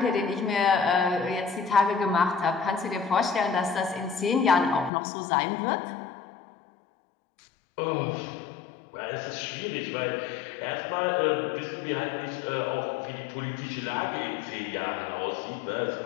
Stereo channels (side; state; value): right; drops out; at 4.9 s